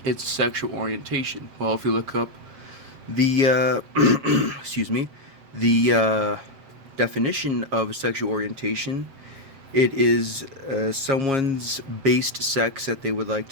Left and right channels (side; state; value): left; late; 7.3 ms